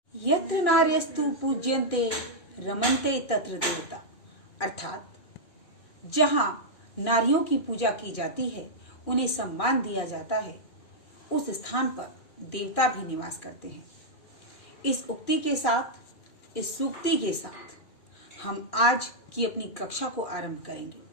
यत्र नार्यस्तु पूज्यन्ते रमन्ते तत्र देवता। अर्थात जहाँ नारियों की पूजा की जाती है, उन्हें सम्मान दिया जाता है, उस स्थान पर देवता भी निवास करते हैं। इस उक्ति के साथ, इस सूक्ति के साथ हम आज की अपनी कक्षा को आरंभ करेंगे।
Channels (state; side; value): late; right; 2.4 ms